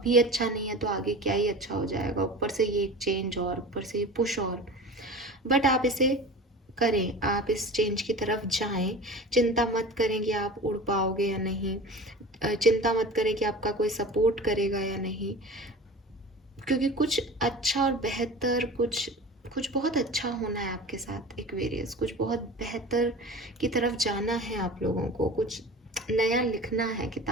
अच्छा नहीं है तो आगे क्या ही अच्छा हो जाएगा. ऊपर से ये एक चेंज और ऊपर से ये पुश और. बट आप इसे करें, आप इस चेंज की तरफ जाएं. चिंता मत करें कि आप उड़ पाओगे या नहीं. चिंता मत करें कि आपका कोई सपोर्ट करेगा या नहीं, क्योंकि कुछ अच्छा और बेहतर, कुछ बहुत अच्छा होना है आपके साथ एक्वेरियस. कुछ बहुत बेहतर की तरफ जाना है आप लोगों को. कुछ नया लिखना है,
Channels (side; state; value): both; normal; correlation 0.36